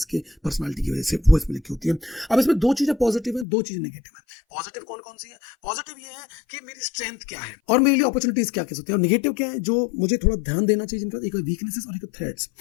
पर्सनालिटी की वजह से, वो इसमें लिखी होती है। अब इसमें 2 चीजें पॉजिटिव है, 2 चीजें नेगेटिव है। पॉजिटिव कौन कौन सी है? पॉजिटिव ये है कि मेरी स्ट्रेंथ क्या है और मेरे लिए अपॉर्चुनिटीज क्या कह सकते हैं और नेगेटिव क्या है जो मुझे थोड़ा ध्यान देना चाहिए, जिनका एक वीकनेसेस और एक थ्रेड्स।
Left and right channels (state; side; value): drops out; right; at 3.5 s